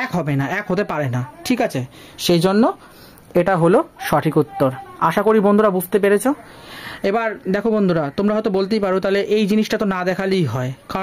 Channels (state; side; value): identical; both; correlation 1.00